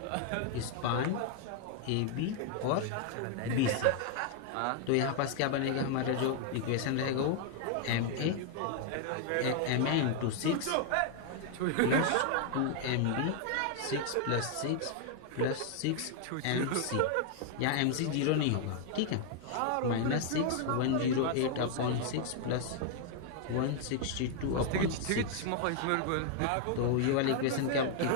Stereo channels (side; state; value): both; different; correlation 0.00